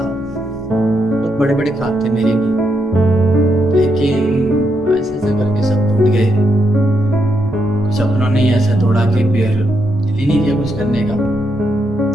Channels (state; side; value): normal; both; correlation 0.80